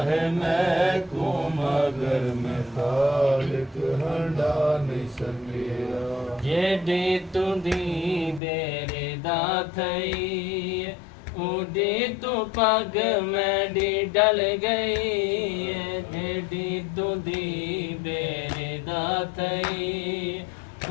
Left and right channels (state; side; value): drops out; right; at 8.4 s